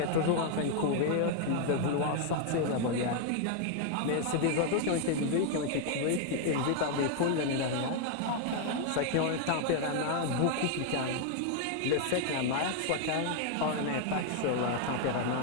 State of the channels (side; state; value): both; different; correlation 0.00